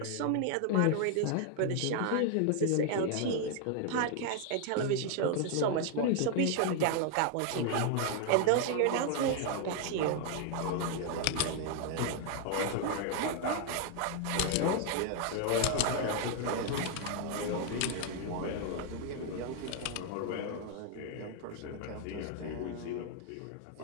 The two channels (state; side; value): different; both; correlation 0.00